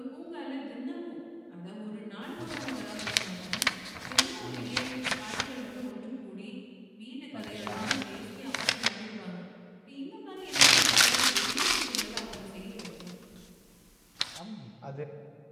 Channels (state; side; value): identical; both; correlation 1.00